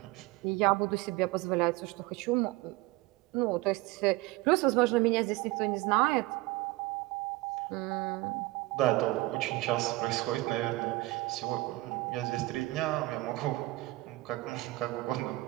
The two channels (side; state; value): left; quieter; 20.2 dB